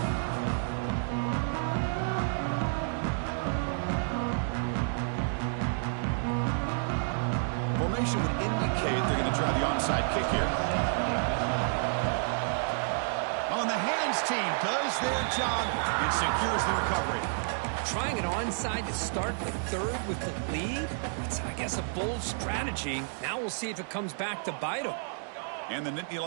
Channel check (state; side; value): silent; left; digital silence